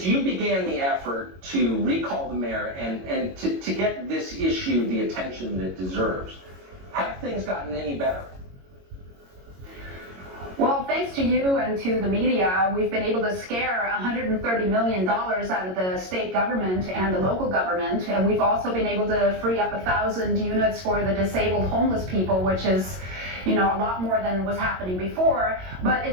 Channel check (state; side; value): late; left; 22 ms